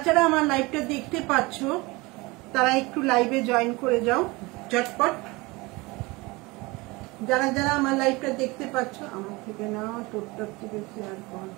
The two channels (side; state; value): left; quieter; 23.7 dB